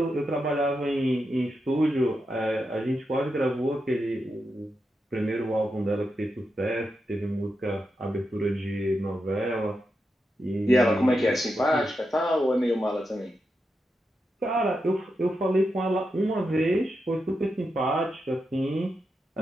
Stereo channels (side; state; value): both; normal; correlation 0.87